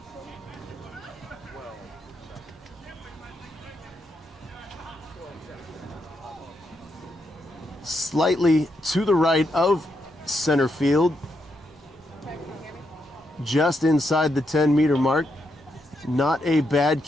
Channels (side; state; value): both; normal; correlation 0.81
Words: slightly to the right of center field, just inside the 10-meter mark. Not a bad